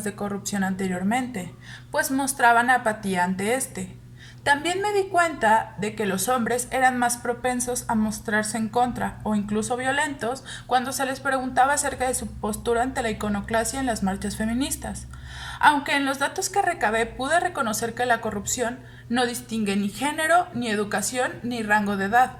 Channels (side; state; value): both; identical; correlation 1.00